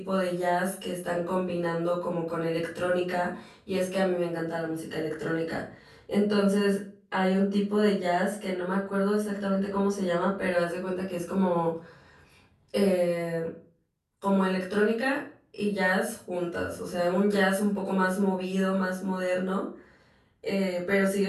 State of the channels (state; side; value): identical; both; correlation 1.00